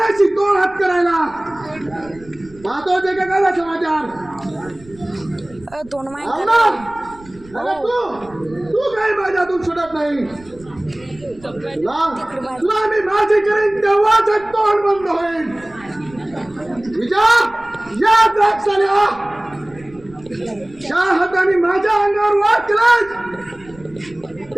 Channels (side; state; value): right; noise; rumble, 23 dB below the sound